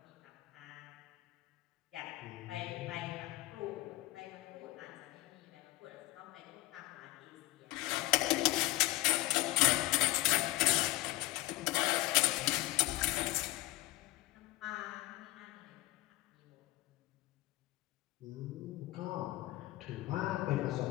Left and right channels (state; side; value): quieter; right; 19.4 dB